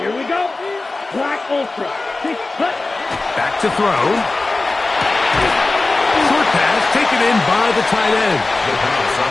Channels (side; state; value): right; quieter; 3.3 dB